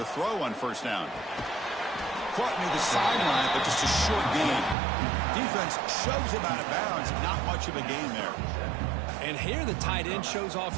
throw on first down. Caught near the sideline, but just a short gain. Defense shoves him out of bounds. Not much of a gain there. And here the tight end shows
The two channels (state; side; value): drops out; left; at 4.8 s